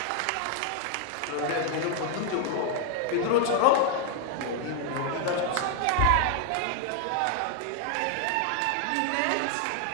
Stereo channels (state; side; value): different; both; correlation 0.00